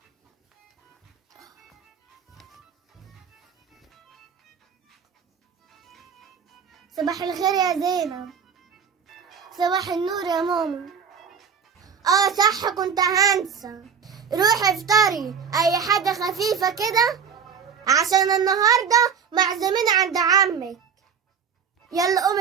صباح الخير يا زينب. صباح النور يا ماما. صح، كنت هنسى. روحي افطري اي حاجة خفيفة كده عشان النهاردة معزومين عند عمك. يلا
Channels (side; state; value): left; quieter; 6.8 dB